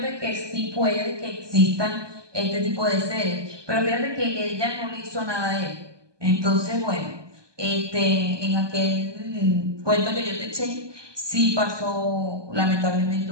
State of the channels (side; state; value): left; late; 1.2 ms